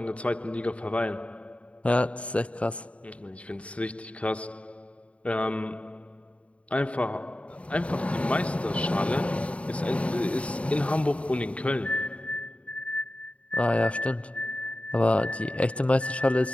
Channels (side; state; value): right; late; 0.064 ms